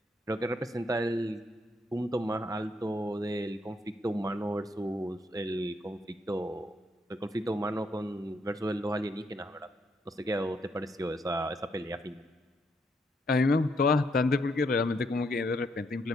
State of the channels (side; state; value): both; normal; correlation 0.75